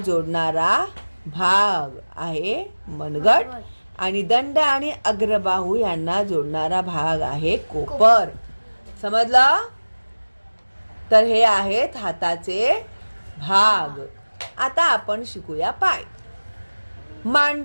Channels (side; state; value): both; inverted; correlation -1.00